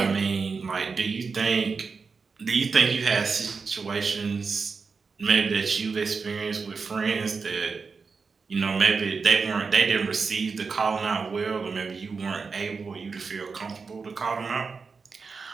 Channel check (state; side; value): quieter; left; 4.9 dB